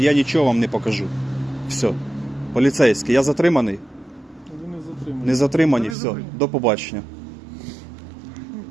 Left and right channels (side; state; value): left; drops out; at 6.0 s